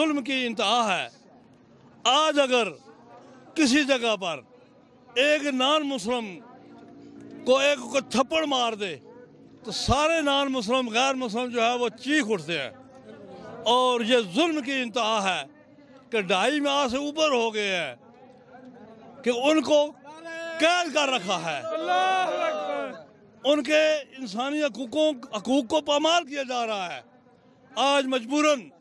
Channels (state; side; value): identical; both; correlation 1.00